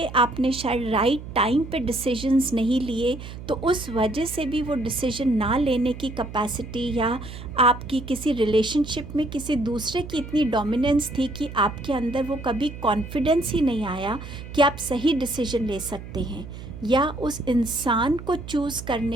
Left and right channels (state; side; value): noise; right; hum, 12 dB below the sound